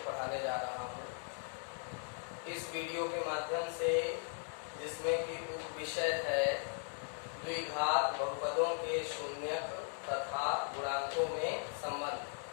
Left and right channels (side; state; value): right; silent; 52 dB below the other